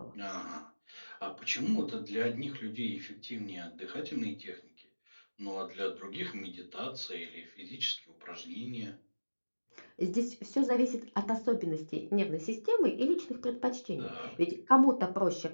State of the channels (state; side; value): inverted; both; correlation -1.00